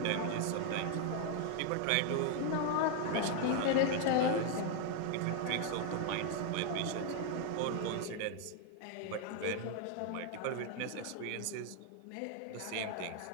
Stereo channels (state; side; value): different; both; correlation 0.01